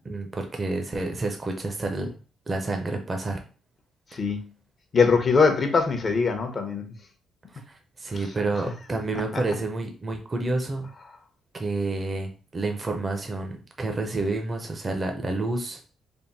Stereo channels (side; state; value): both; normal; correlation 0.79